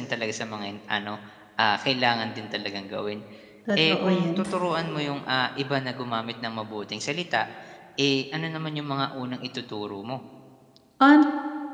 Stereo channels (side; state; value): both; identical; correlation 1.00